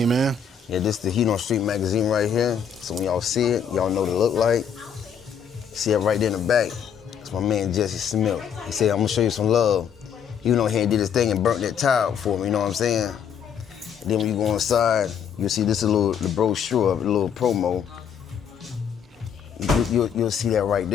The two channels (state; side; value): quieter; right; 7.5 dB